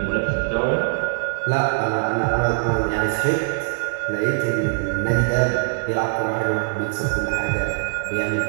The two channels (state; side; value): silent; left; digital silence